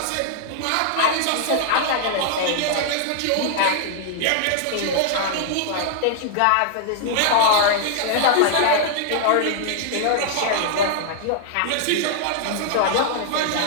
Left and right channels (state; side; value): different; both; correlation -0.01